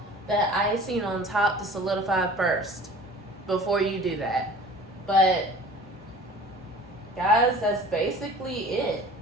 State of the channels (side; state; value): both; normal; correlation 0.44